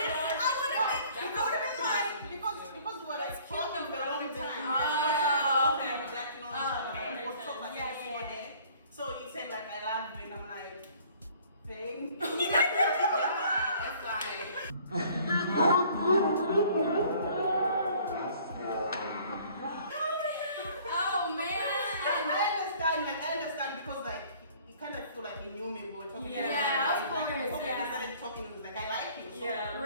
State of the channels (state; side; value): inverted; both; correlation -0.55